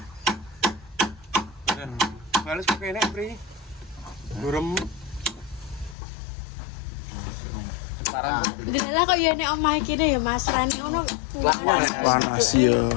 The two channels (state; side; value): drops out; right; at 6.0 s